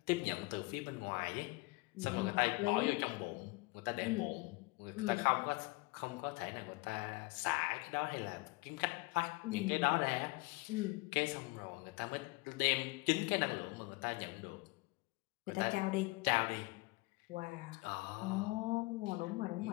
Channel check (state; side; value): quieter; right; 24.3 dB